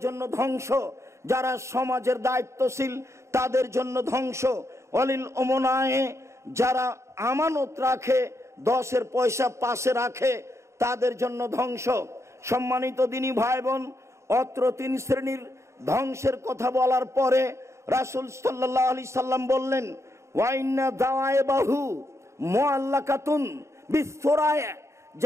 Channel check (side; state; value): left; late; 0.14 ms